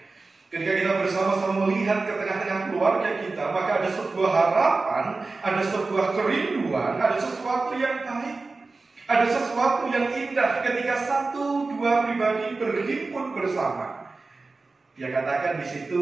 Ketika kita bersama-sama melihat ke tengah-tengah keluarga kita, maka ada sebuah harapan, ada sebuah kerinduan, ada sesuatu yang baik, ada sesuatu yang indah ketika satu dua pribadi berhimpun bersama. Dia katakan di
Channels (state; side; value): quieter; left; 3.7 dB